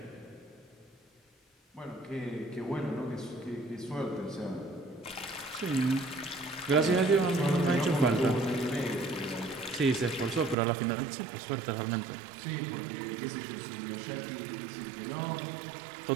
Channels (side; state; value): left; drops out; at 10.6 s